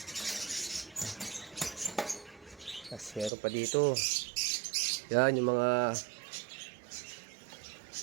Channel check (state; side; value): drops out; left; at 3.3 s